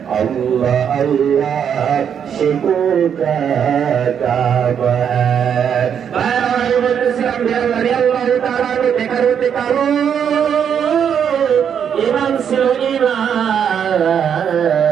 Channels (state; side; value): quieter; left; 8.1 dB